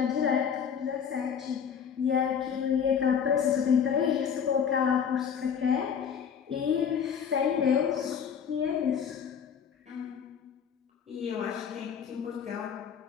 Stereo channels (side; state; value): right; quieter; 7.5 dB